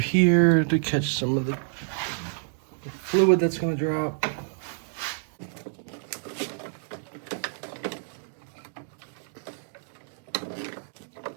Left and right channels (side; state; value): left; silent; digital silence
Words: to catch some of the fluid that's gonna drop.